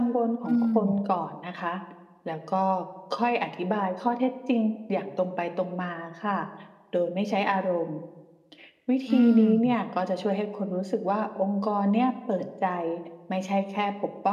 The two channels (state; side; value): identical; both; correlation 1.00